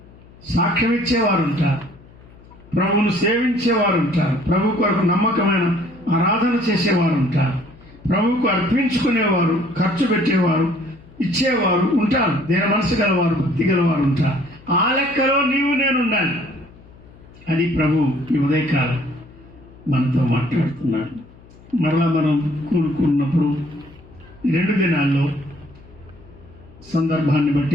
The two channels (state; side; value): noise; left; hum, 23 dB below the sound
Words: సాక్ష్యం ఇచ్చేవారు ఉంటారు, ప్రభువును సేవించేవారు ఉంటారు, ప్రభు కొరకు నమ్మకమైన ఆరాధన చేసేవారు ఉంటారు, ప్రభువుకు అర్పించుకునేవారు, ఖర్చు పెట్టేవారు, ఇచ్చేవారు ఉంటారు, దేని మనసు గలవారు, భక్తి గలవారు ఉంటారు. ఆ లెక్కలో నీవు నేను ఉండాలి. అది ప్రభు ఈ ఉదయకాలం మనతో మాట్లాడుతున్నాడు. మరలా మనం కూడుకున్నప్పుడు 2 దినాల్లో సందర్భాన్ని